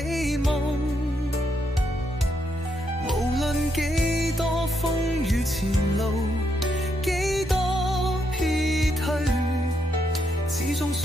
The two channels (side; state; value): both; normal; correlation 0.78